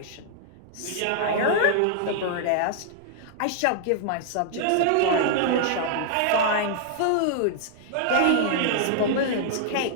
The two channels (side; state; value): both; different; correlation -0.01